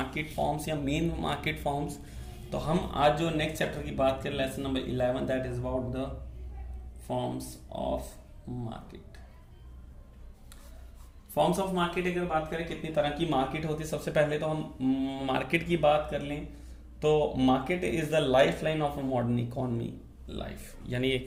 फॉर्म्स या मेन मार्केट फॉर्म्स। तो हम आज जो नेक्स्ट चैप्टर की बात करें lesson number 11 that is about the forms of market. Forms of market अगर बात करें कितनी तरह की मार्केट होती है, सबसे पहले तो हम मार्केट की बात कर लें तो market is the life line of a modern economy life, यानी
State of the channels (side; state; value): both; identical; correlation 1.00